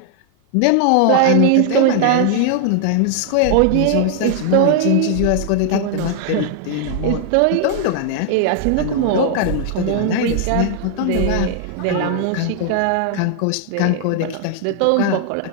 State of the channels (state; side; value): different; both; correlation 0.00